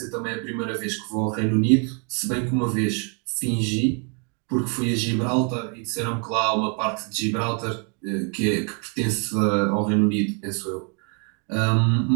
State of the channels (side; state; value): left; quieter; 36.5 dB